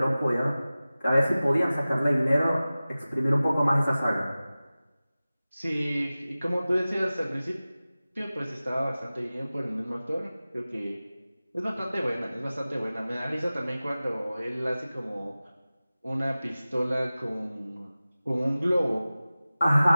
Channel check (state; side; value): inverted; both; correlation -0.97